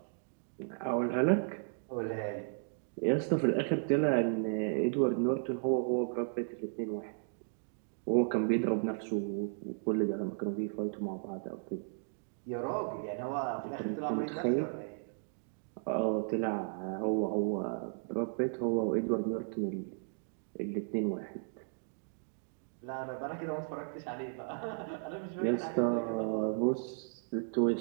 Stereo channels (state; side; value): silent; left; digital silence